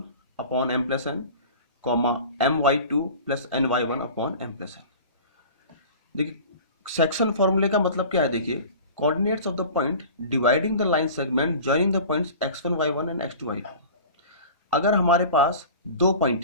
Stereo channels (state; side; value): inverted; both; correlation -0.39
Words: upon m plus n, comma my2 plus ny1 upon m plus n। देखिए, section फॉर्मूले का मतलब क्या है। देखिए, coordinates of the point dividing the line segment joining the points x1 y1 and x2 y2। अगर हमारे पास दो